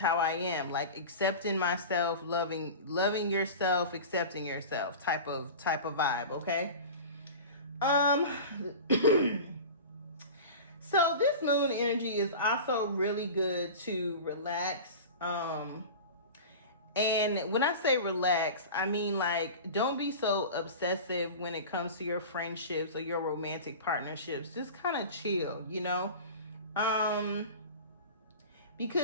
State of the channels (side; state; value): both; inverted; correlation -0.33